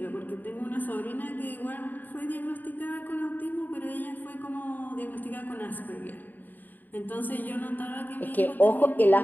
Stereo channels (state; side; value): late; right; 0.087 ms